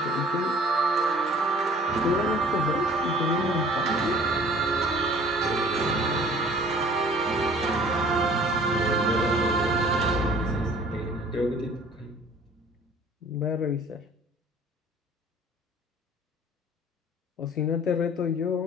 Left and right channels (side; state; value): both; normal; correlation 0.51